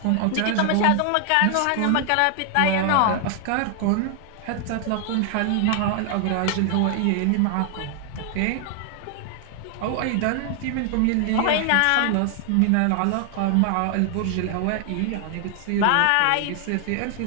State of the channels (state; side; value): different; both; correlation 0.00